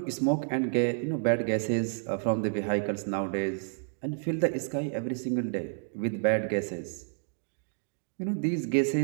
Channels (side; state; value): left; silent; digital silence